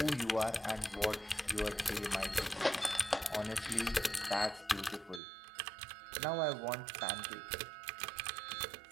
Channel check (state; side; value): drops out; left; at 5.2 s